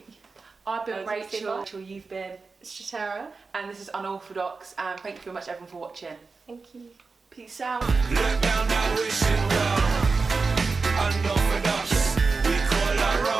I've been Rachel, you've been Strateraa, and this is Unorthodox, and thank you very much everyone for watching. Thank you. Peace out. Look down now, wishing well. Unorthodox, we call our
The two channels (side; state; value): left; quieter; 4.3 dB